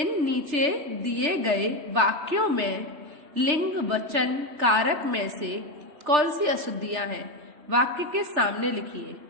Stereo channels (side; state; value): left; late; 3.4 ms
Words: नीचे दिए गए वाक्यों में लिंग वचन कारक में से कौन सी अशुद्धियां हैं? वाक्य के सामने लिखिए।